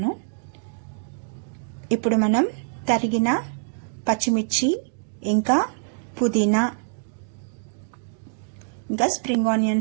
ఇప్పుడు మనం తరిగిన పచ్చిమిర్చి, ఇంకా పుదీనా, ఇంకా స్ప్రింగ్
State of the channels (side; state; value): left; silent; digital silence